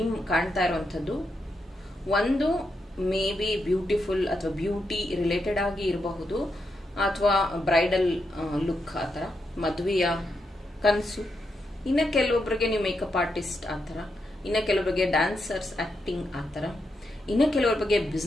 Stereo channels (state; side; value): normal; both; correlation 0.83